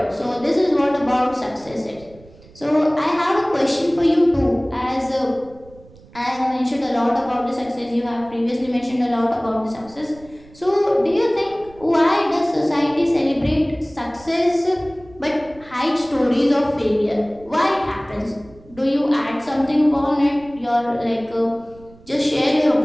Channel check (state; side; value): noise; right; rumble, 24 dB below the sound